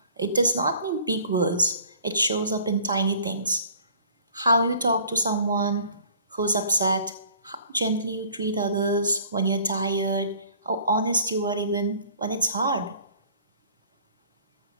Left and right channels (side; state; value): both; inverted; correlation -0.52